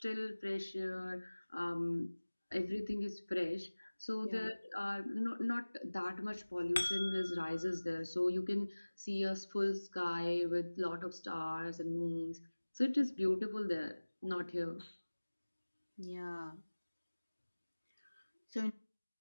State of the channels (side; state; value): both; inverted; correlation -1.00